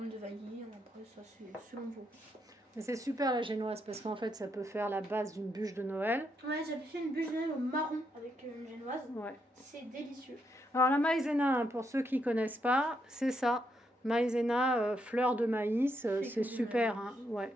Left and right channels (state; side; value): normal; both; correlation 0.78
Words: de vanille. Après, ça, c'est selon vous. Mais c'est super la génoise parce qu'en fait, ça peut faire la base d'une bûche de Noël. Ouais, j'avais fait une bûche de Noël au marron avec une génoise. Ouais. C'est délicieux. Alors, la maïzena, hein, pour ceux qui ne connaissent pas, c'est ça. Maïzena, fleur de maïs, c'est super. Hein, ouais.